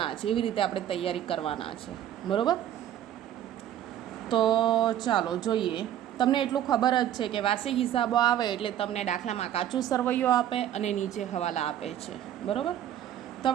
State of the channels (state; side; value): quieter; left; 11.2 dB